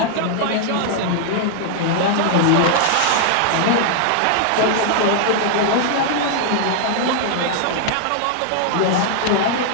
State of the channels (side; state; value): both; different; correlation -0.01